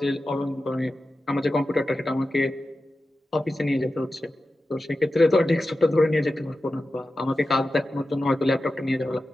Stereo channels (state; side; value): normal; both; correlation 0.93